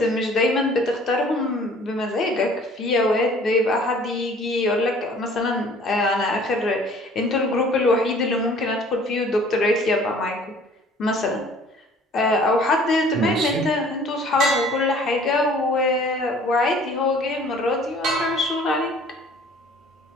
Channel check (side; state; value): both; normal; correlation 0.52